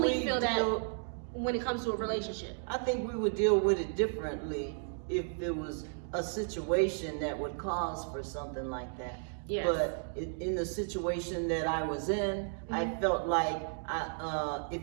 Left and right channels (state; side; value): silent; left; digital silence